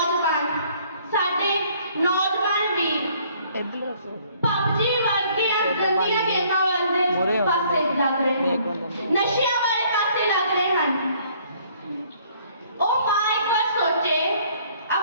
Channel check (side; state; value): both; inverted; correlation -0.61